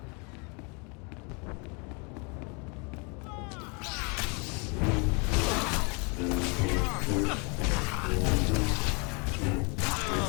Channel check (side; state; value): right; quieter; 33.2 dB